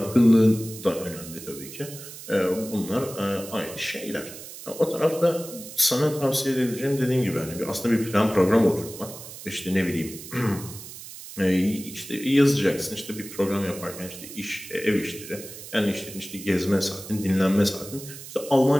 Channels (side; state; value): right; noise; hiss, 13 dB below the sound